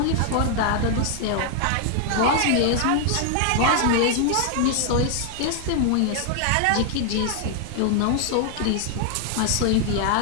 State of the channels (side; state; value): both; different; correlation 0.00